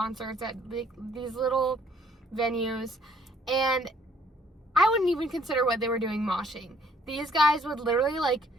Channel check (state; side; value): normal; both; correlation 0.63